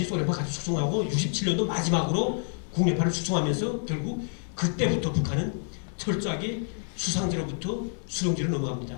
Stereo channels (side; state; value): right; silent; 59 dB below the other